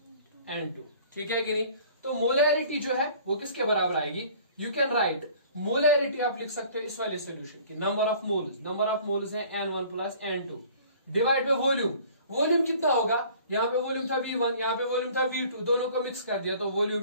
N2. ठीक है कि नहीं. तो मोलैरिटी जो है वो किसके बराबर आएगी, यू कैन राइट मोलैरिटी, आप लिख सकते हो इस वाले सोल्यूशन की नंबर ऑफ मोल्स है N1 plus N2 divide by volume. Volume कितना होगा, यहाँ पे वॉल्यूम था V1, यहाँ पे वॉल्यूम था V2, दोनों को मिक्स कर दिया तो volume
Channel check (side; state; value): both; inverted; correlation -0.51